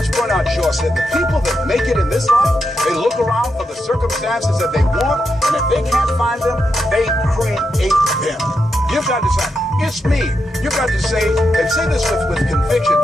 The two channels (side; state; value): both; normal; correlation 0.84